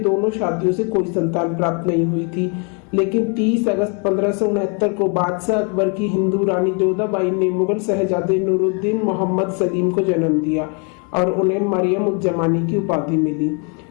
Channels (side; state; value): right; quieter; 36.8 dB